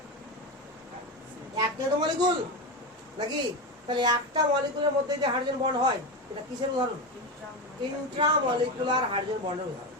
একটা তো মলিকুল নাকি? তাহলে একটা মলিকুলের মধ্যে যে হাইড্রোজেন বন্ড হয়, এটা কিসের উদাহরণ? ইন্ট্রামলিকুলার হাইড্রোজেন বন্ডের উদাহরণ।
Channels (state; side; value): normal; both; correlation 0.17